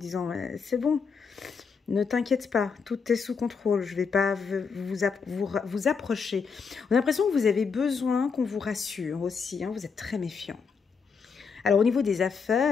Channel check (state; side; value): quieter; right; 5.6 dB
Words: c'est bon. Ne t'inquiète pas, tout est sous contrôle, je ne vais pas vous approcher. On a l'impression que vous avez besoin qu'on vous rassure aussi, hein, vous êtes très méfiant. Alors au niveau des